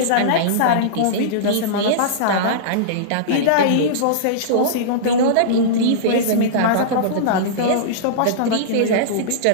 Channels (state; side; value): different; both; correlation -0.03